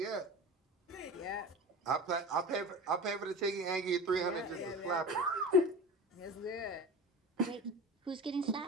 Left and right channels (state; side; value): normal; both; correlation 0.32